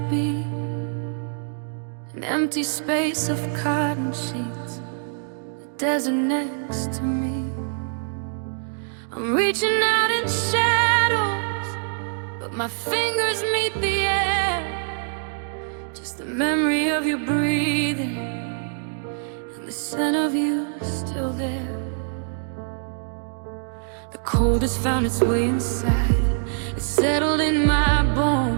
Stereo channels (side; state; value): left; silent; digital silence